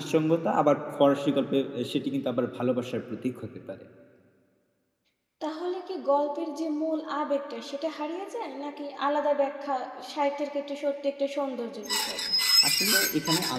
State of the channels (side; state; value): both; identical; correlation 1.00